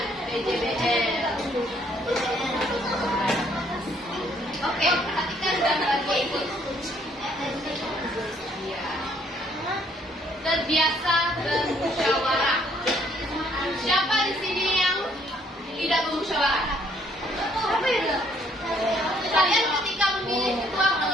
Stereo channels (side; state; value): both; normal; correlation 0.66